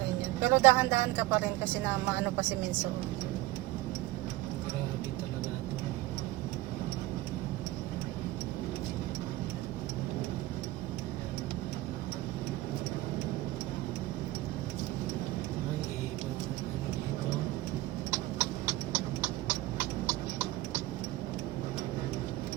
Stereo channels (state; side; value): quieter; left; 17.7 dB